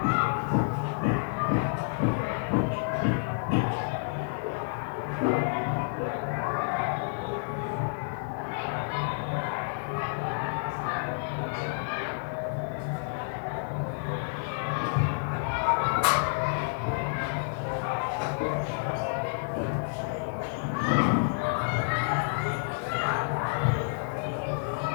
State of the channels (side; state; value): right; silent; digital silence